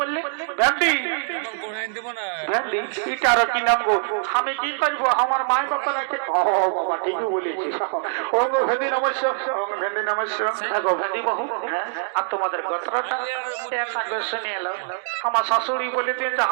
বললি ভ্যান্ডি ভ্যান্ডি এটা আর কি নাম গো আমি কি করবো আমার মায়ের কথা রাখে ও বাবা ঠিকই বলেছি ও গো ভ্যান্ডি নমস্য ভ্যান্ডি নমস্য গো ভ্যান্ডি বহু আর তোমাদের গোত্রটা একটা শুনে এলো আমার শাশুড়ি বলে দিন যে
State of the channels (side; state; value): left; silent; digital silence